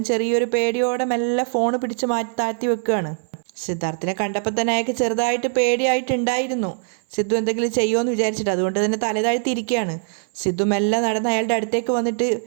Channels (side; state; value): left; silent; 57 dB below the other